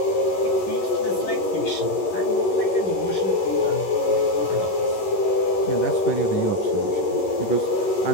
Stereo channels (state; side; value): late; right; 11 ms